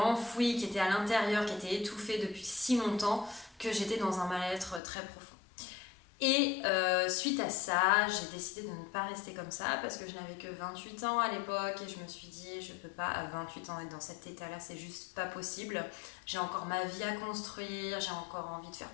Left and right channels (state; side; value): drops out; right; at 4.8 s